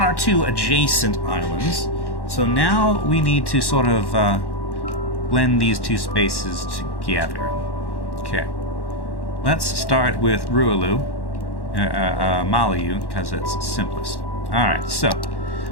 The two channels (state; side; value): late; right; 1.1 ms